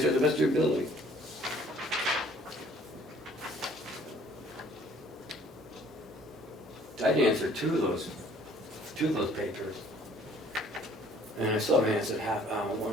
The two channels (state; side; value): normal; both; correlation 0.56